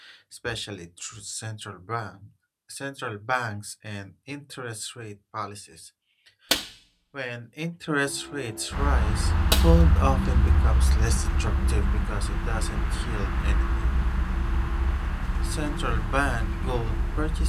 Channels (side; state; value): both; identical; correlation 1.00